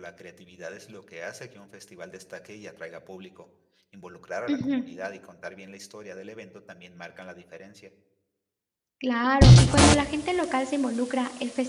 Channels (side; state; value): both; identical; correlation 1.00